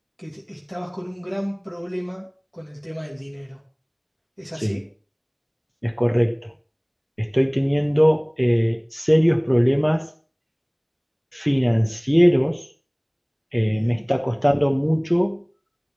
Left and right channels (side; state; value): both; identical; correlation 1.00